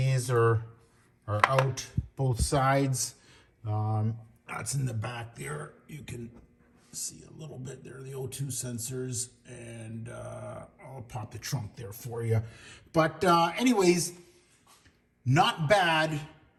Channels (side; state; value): both; identical; correlation 1.00